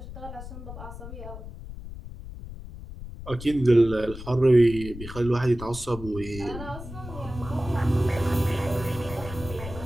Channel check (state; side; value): noise; left; rumble, 12 dB below the sound